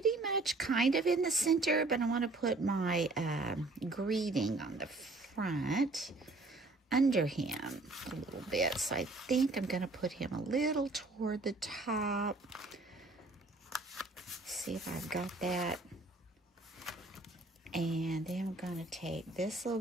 much kind of in the center, but I want to put my greeting on the front under him a little bit. So I think I'm going to put him a little toward the top. See if I've got that. And then I'm going to take this little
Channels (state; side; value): quieter; left; 3.1 dB